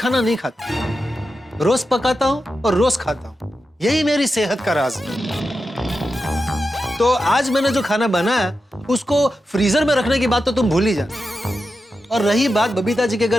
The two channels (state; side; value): normal; both; correlation 0.90